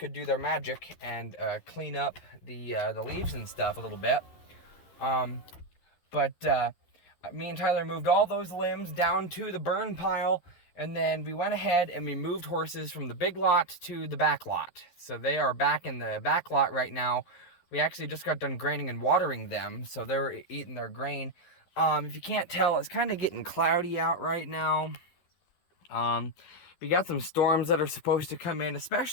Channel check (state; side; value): late; right; 12 ms